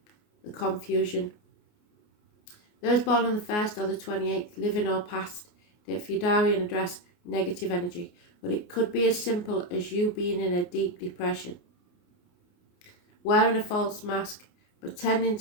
the confusion. Those born on the 1st or the 28th, living or past, date for your diary and address, negative energy. But it could be as simple as you being in a deep depression, wearing a false mask, pretending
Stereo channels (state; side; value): late; right; 29 ms